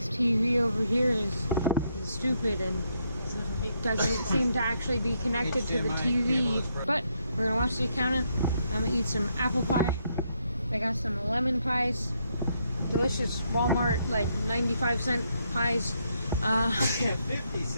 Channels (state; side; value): inverted; both; correlation -0.76